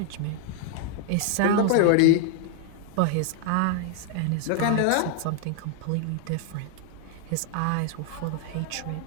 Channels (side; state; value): both; different; correlation 0.00